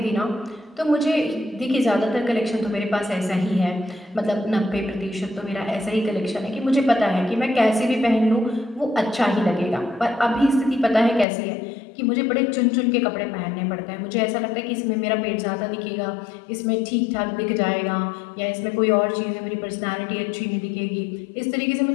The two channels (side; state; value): right; drops out; at 11.2 s